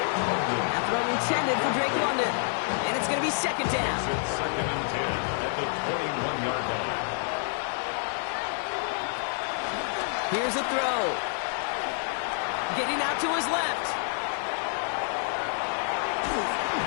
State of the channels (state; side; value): silent; right; 59 dB below the other